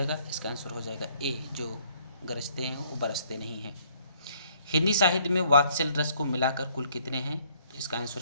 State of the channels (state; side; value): inverted; both; correlation -0.64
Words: इसका आंसर हो जाएगा ए, जो गरजते हैं वो बरसते नहीं हैं। हिंदी साहित्य में वात्सल रस को मिलाकर कुल कितने हैं? तो इसका